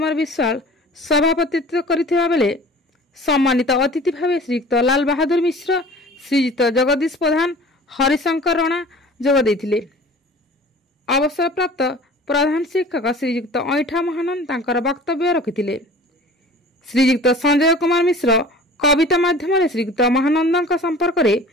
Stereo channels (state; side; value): normal; both; correlation 0.44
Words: विश्वाल सभापतित्व करथिबा बेले सम्मानित अतिथि भाव श्रीयुक्त लाल बहादुर मिश्र, श्रीयुक्त जगदीश प्रधान, हरिशंकर राणा जोग देथिले। अवसर प्राप्त प्रधान शिक्षक श्रीयुक्त ऐठा महानंद तांकर वक्तव्य रखिथिले। श्रीयुक्त संजय कुमार मिश्र कविता माध्यम श्रीयुक्त महानंद संपर्क में